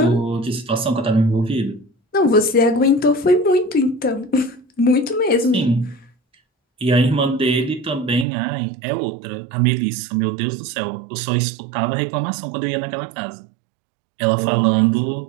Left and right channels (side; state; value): left; drops out; at 8.2 s